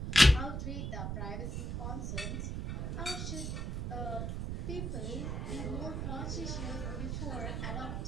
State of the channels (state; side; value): noise; right; rumble, 2 dB below the sound